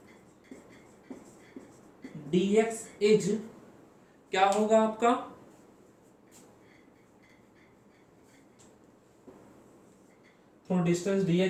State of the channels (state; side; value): identical; both; correlation 1.00